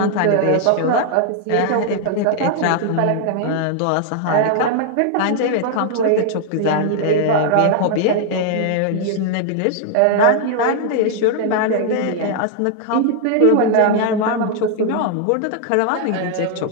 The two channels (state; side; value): different; both; correlation 0.00